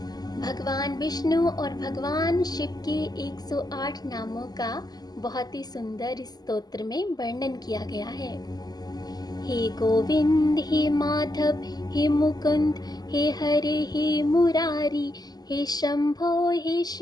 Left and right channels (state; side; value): late; right; 0.19 ms